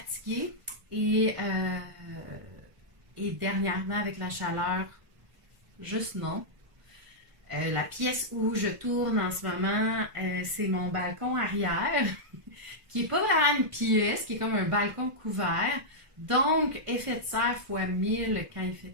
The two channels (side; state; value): left; late; 1.4 ms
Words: Et dernièrement, avec la chaleur, juste non. La pièce où je tourne en ce moment, c'est mon balcon arrière, qui n'est pas vraiment une pièce, qui est comme un balcon couvert. Donc, effet de serre fois 1000 quand il